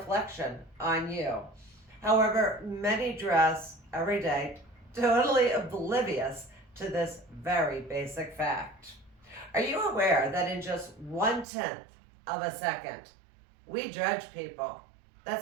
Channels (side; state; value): left; drops out; at 11.5 s